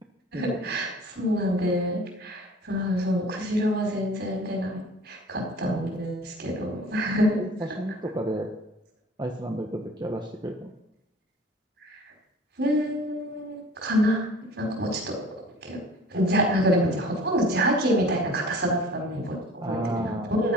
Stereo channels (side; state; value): both; normal; correlation 0.46